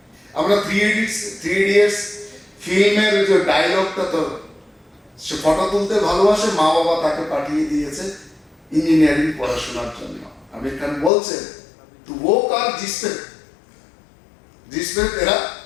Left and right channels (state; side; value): drops out; right; at 11.1 s